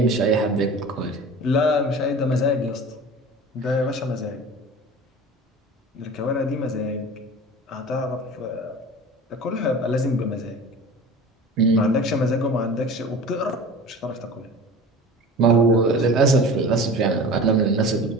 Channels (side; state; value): both; normal; correlation 0.37